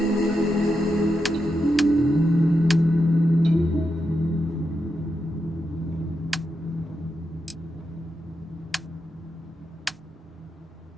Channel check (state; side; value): normal; both; correlation 0.86